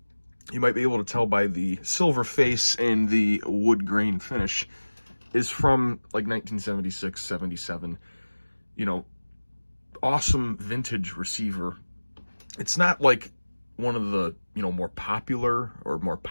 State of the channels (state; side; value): inverted; both; correlation -1.00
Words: might be able to tell by the silver face and the wood grain finish, is from like 1976, 77. You know, awesome vintage receiver. It's not like one of the, more popular or more